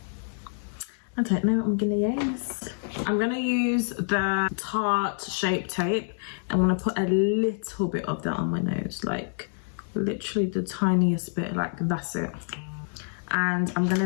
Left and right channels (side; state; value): right; silent; 60 dB below the other